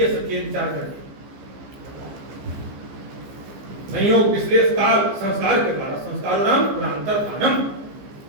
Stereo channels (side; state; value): left; late; 15 ms